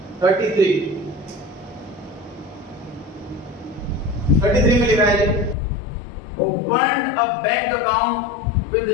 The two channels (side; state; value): right; drops out; at 5.6 s